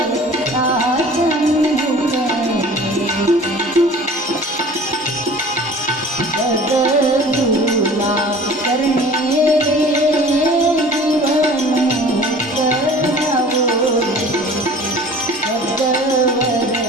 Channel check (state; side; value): normal; both; correlation 0.45